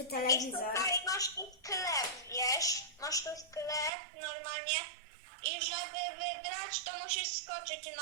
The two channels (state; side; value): drops out; left; at 3.9 s